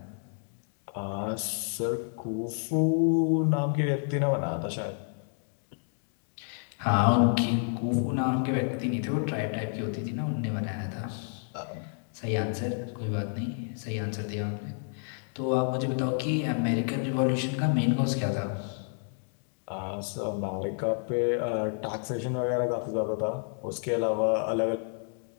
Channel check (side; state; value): right; silent; 58 dB below the other